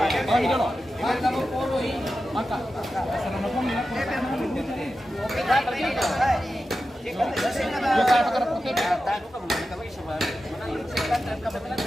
dolo? Maka mo puro eh. Maka. Sana na pong nila. Yo kaya pakara puti.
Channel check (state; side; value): normal; both; correlation 0.92